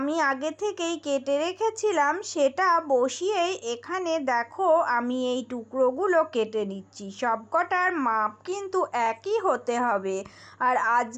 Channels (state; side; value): identical; both; correlation 1.00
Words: আগে থেকেই কেটে রেখেছিলাম, সেটা বসিয়েই এখানে দেখো আমি এই টুকরোগুলো কেটে নিচ্ছি। সবকটার মাপ কিন্তু একই হতে হবে, আর